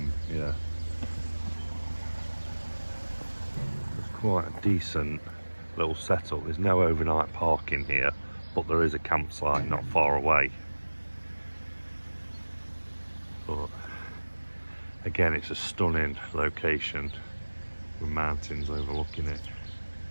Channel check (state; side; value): inverted; both; correlation -1.00